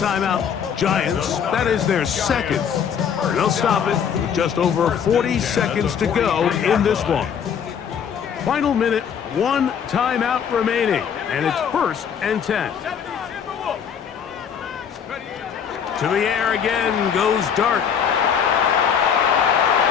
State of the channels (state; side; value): quieter; right; 7.7 dB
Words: Giants, that is their second. They'll stop it with just over 40 seconds to go in this one. Final minute, 1 timeout remaining, and it's first and 10. To the air again goes Dart.